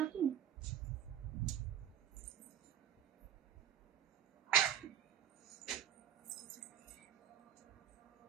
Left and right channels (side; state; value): left; quieter; 10.2 dB